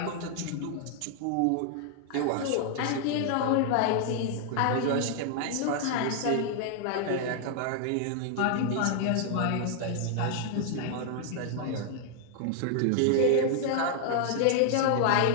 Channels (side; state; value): both; different; correlation 0.00